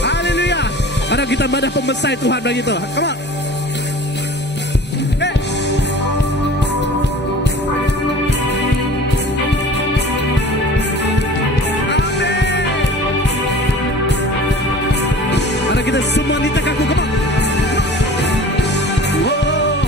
Haleluya! Ada kita madah pemesai Tuhan bagi tu. Come on. Kita semua nita kaku, come on.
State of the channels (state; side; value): normal; both; correlation 0.42